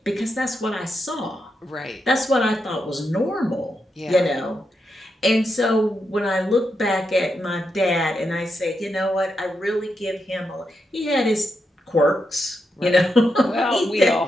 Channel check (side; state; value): both; normal; correlation 0.84